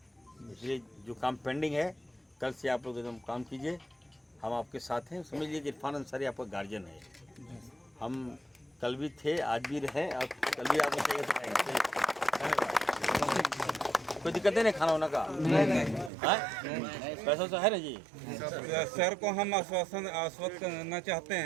इसलिए जो काम पेंडिंग है, कल से आप लोग एकदम काम कीजिए, हम आपके साथ हैं। समझ लीजिए कि इरफान अंसारी आपका गार्जियन है। हम कल भी थे, आज भी रहे, और कल भी आपको चाहिए तो आएंगे। कोई दिक्कत नहीं खाना वाना का? नहीं, पैसा तो है ना जी। सर को हम आश्वस्त करना चाहते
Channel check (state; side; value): drops out; left; at 16.1 s